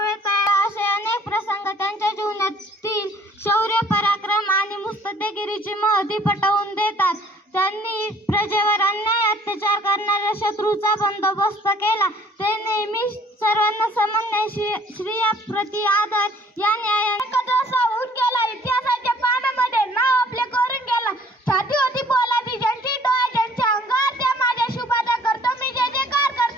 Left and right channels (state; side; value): normal; both; correlation 0.57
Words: असे अनेक प्रसंग त्यांच्या जीवनातील शौर्य, पराक्रम आणि मुत्सद्देगिरीची महती पटवून देतात. त्यांनी प्रजेवर अन्याय अत्याचार करणाऱ्या शत्रूचा बंदोबस्त केला. ते नेहमी सर्वांना समन्वय, श्रेयाप्रती आदर या न्यायाने होऊन गेला. इतिहासाच्या पानामध्ये नाव आपले करून गेला. छाती होती पोलादी ज्यांची, डोळा ज्यांच्या अंगावर, त्या माझ्या शुभाचा करतो मी जय जयकार,